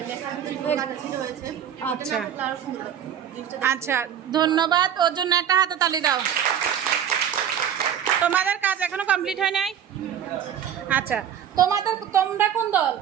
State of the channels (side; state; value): left; quieter; 9.3 dB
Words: আচ্ছা আচ্ছা, ধন্যবাদ। ওর জন্য একটা হাততালি দাও। তোমাদের কাজ এখনো কমপ্লিট হয় নাই? আচ্ছা, তোমরা কোন দল?